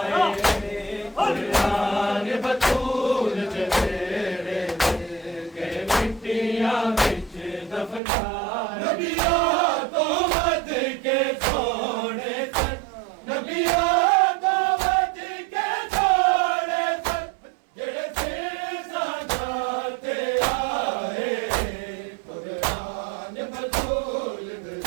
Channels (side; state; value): left; drops out; at 8.0 s